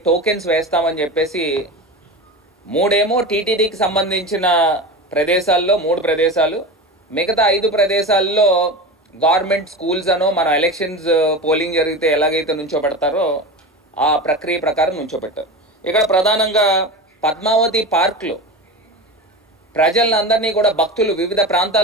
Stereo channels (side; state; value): both; normal; correlation 0.27